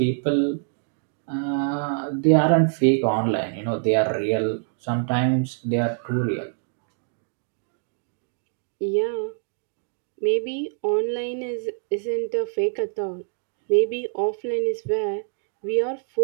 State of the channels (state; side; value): silent; left; digital silence